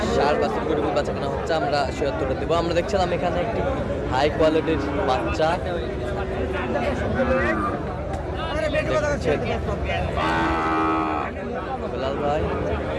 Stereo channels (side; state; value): both; identical; correlation 1.00